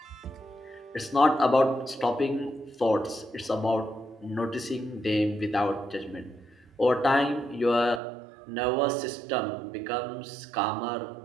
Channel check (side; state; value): left; drops out; at 8.0 s